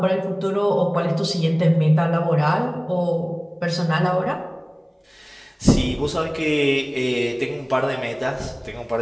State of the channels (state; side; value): identical; both; correlation 1.00